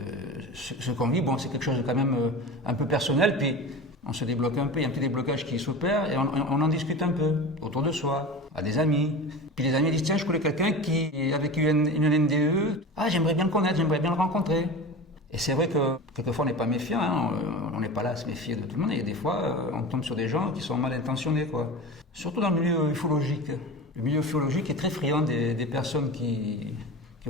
ce qu'on vit, bon, c'est quelque chose de quand même un peu personnel. Puis on se débloque un peu, il y a un petit déblocage qui s'opère et on en discute un peu autour de soi, à des amis. Puis les amis disent, tiens, je connais quelqu'un qui a vécu une NDE. Ah, j'aimerais bien le connaître, j'aimerais bien le rencontrer. Et c'est vrai que quelquefois on n'est pas méfiant, hein. On n'est pas là à se méfier de tout le monde. Et des fois, on tombe sur des gens qui sont mal intentionnés, quoi. Surtout dans le milieu ufologique. Le milieu ufologique est très friand des personnes qui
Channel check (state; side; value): normal; both; correlation 0.31